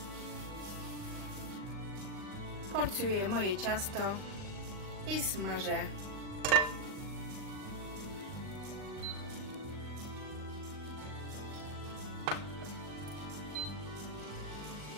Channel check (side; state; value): left; late; 39 ms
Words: Porcjuję moje ciasto i smażę.